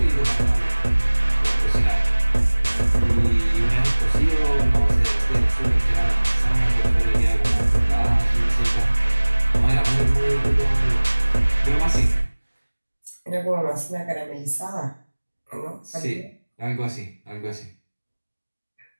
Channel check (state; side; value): inverted; both; correlation -1.00